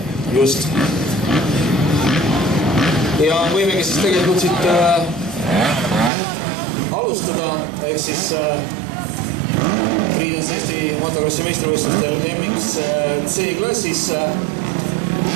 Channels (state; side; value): drops out; left; at 6.1 s